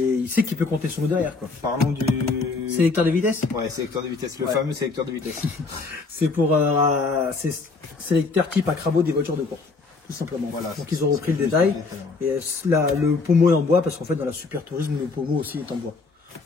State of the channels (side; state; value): right; quieter; 4.1 dB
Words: il sait qu'il peut compter sur nous derrière, quoi. Parlons du sélecteur de vitesse. Ouais, sélecteur de vitesse, le fameux sélecteur de vitesse. C'est pour sélecteur type Acrabo des voitures de course, tout simplement. Voilà, donc ils ont repris le détail. Et le pommeau est en bois parce qu'en fait dans la Super Tourisme le pommeau aussi est en bois.